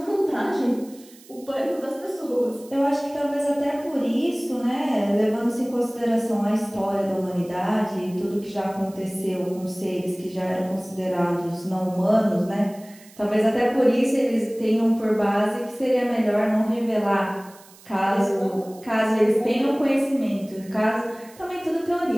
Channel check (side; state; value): right; noise; hiss, 24 dB below the sound